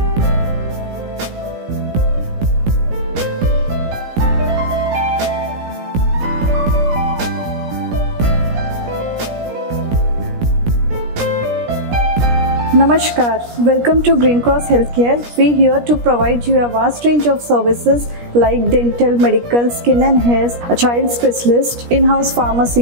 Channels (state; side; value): late; left; 17 ms